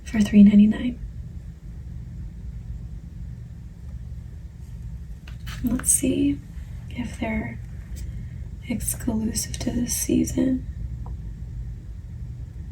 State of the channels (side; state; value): both; identical; correlation 1.00